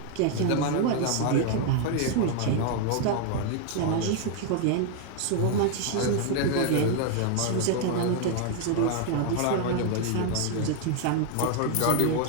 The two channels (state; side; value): different; both; correlation 0.00